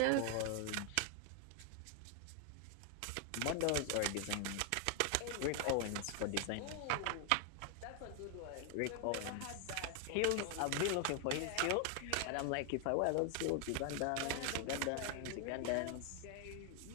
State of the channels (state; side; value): different; both; correlation 0.00